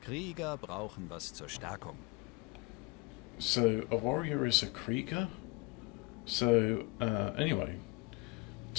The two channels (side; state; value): right; quieter; 25.0 dB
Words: Krieger brauchen was zur Stärkung. So, a warrior is a Krieger? So, anyway.